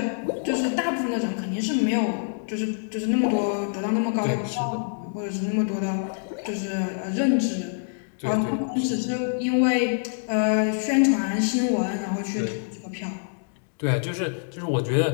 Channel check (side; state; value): right; silent; digital silence